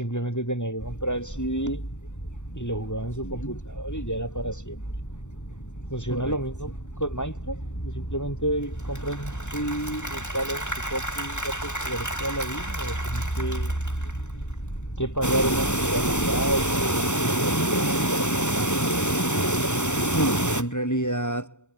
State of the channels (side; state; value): right; late; 0.84 ms